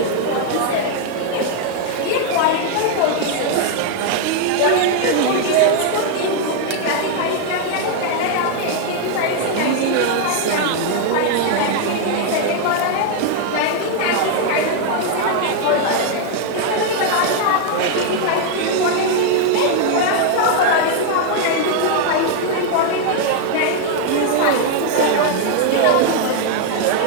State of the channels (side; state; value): both; different; correlation 0.00